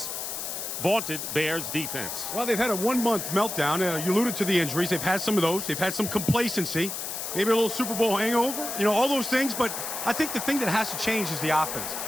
vaunted Bears defense? Well, they've had a one-month meltdown. You alluded to the injuries. They've had some of those. They've had some complacency, maybe a little Super Bowl hangover, you know, all those things. But I think the thing that has to change is the offense.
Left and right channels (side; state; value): left; noise; hiss, 5 dB below the sound